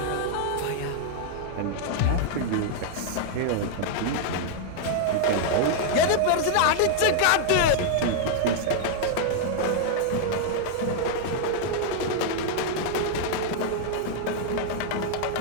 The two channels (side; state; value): both; different; correlation -0.01